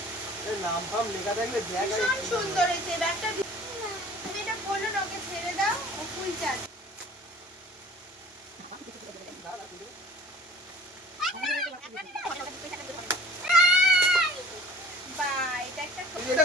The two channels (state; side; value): normal; both; correlation 0.48